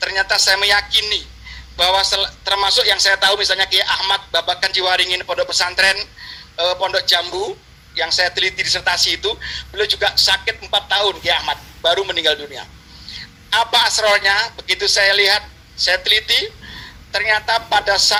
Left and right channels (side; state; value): both; identical; correlation 1.00